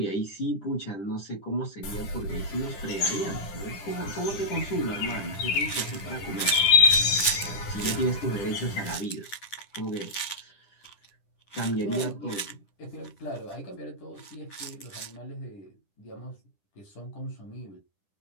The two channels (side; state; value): right; late; 10 ms